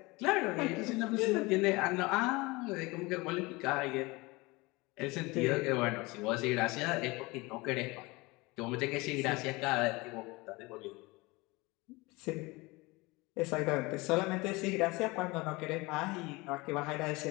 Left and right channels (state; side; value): quieter; right; 23.6 dB